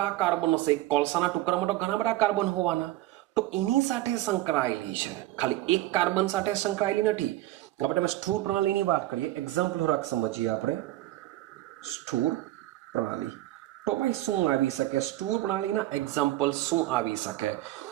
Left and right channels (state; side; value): quieter; left; 15.9 dB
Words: કાર્બન હશે. કોલસાના ટુકડામાં તો ઘણા બધા કાર્બન હોવાના, તો એની સાથે સંકળાયેલી છે, ખાલી એક કાર્બન સાથે સંકળાયેલી નથી. આપણે સ્થૂળ પ્રણાલીની વાત કરીએ, એક્ઝામ્પલ થોડાક સમજીએ આપણે. સ્થૂળ પ્રણાલી તો ભાઈ શું આવી શકે? સ્થૂળ પ્રણાલીના એક્ઝામ્પલ શું આવી શકે?